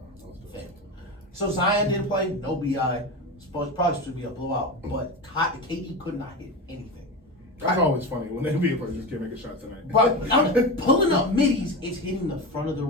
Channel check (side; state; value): both; normal; correlation 0.22